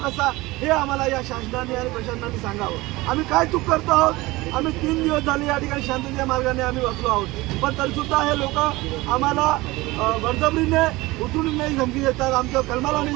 कसा हे आम्हाला या शासनाने आणि प्रशासनाने सांगावं. आम्ही काय चूक करतो आहोत? आम्ही 3 दिवस झाले या ठिकाणी शांतीच्या मार्गाने आम्ही बसलो आहोत, पण तरीसुद्धा हे लोक आम्हाला बळजबरीने उचलून धमकी देतात, आमच्या कलमाला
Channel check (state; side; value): quieter; left; 20.6 dB